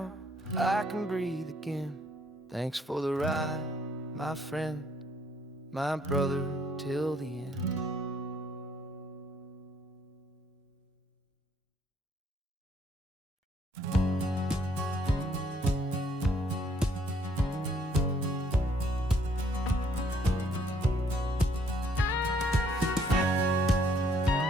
I can breathe again. Thanks for the ride, my friend, my brother, till the end.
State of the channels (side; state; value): both; normal; correlation 0.66